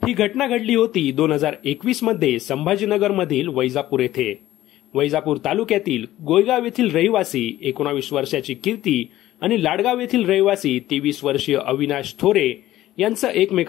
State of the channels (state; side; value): quieter; right; 14.7 dB